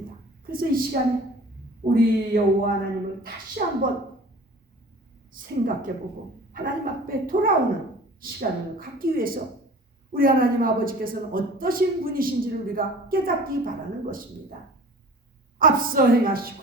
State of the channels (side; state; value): both; normal; correlation 0.44